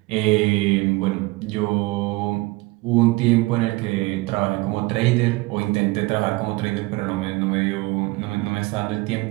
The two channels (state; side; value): quieter; left; 22.4 dB